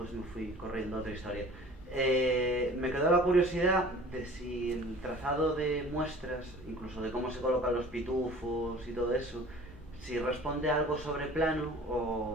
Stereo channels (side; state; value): both; normal; correlation 0.46